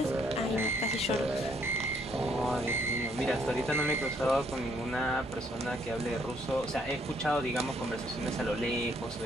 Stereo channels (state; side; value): normal; both; correlation 0.69